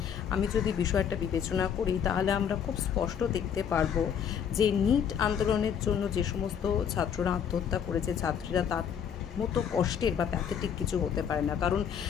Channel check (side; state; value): right; quieter; 8.0 dB